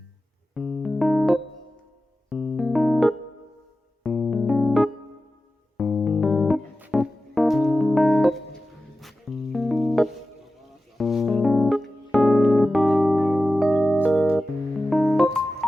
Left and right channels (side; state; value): both; normal; correlation 0.94